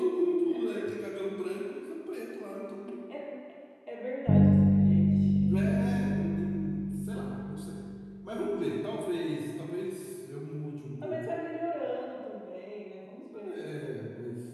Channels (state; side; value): identical; both; correlation 1.00